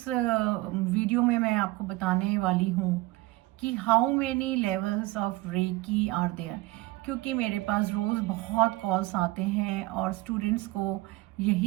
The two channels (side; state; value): left; quieter; 20.0 dB